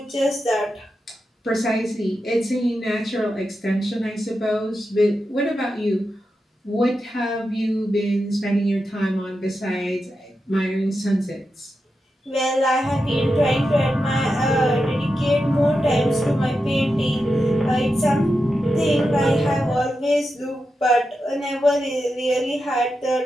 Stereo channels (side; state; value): both; normal; correlation 0.89